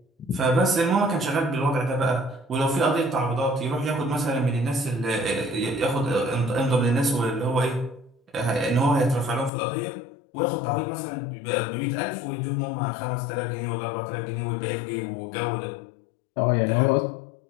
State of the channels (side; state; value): right; drops out; at 9.5 s